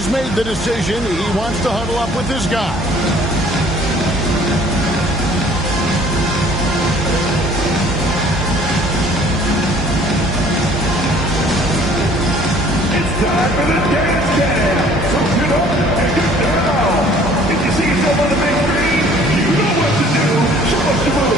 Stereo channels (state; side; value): normal; both; correlation 0.54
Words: made the decision. He wants to huddle up with his guy. Time for the dance jam. So get up and get down. If you see yourself on the big screen, you know what to do. Show us the